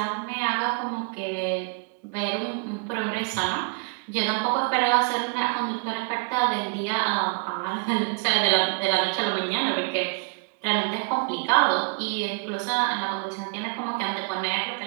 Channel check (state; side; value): quieter; left; 34.7 dB